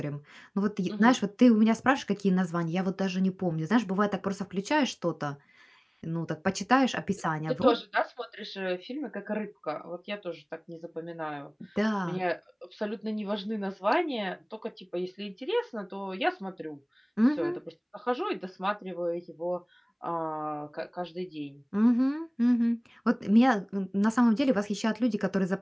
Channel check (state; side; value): identical; both; correlation 1.00